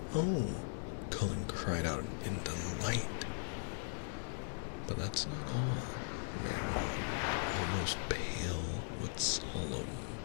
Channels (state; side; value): silent; right; digital silence